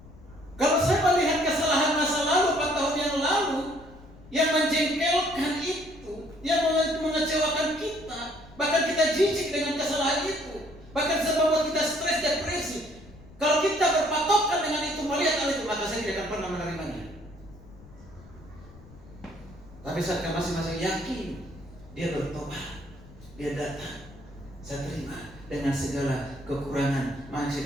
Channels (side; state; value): left; noise; rumble, 21 dB below the sound